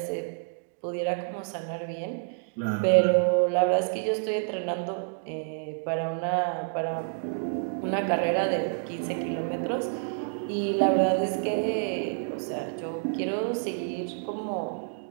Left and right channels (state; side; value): silent; left; 59 dB below the other